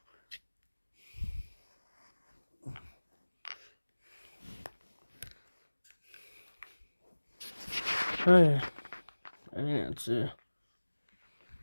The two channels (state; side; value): inverted; both; correlation -1.00